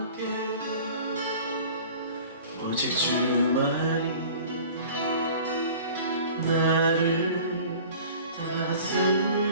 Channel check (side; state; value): both; inverted; correlation -0.44